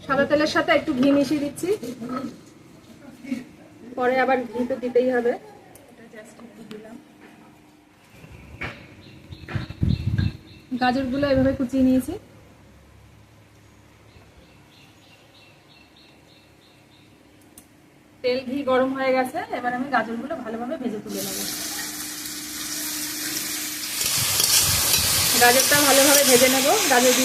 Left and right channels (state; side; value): identical; both; correlation 1.00